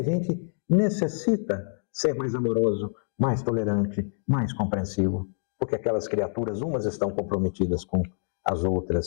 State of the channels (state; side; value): silent; right; digital silence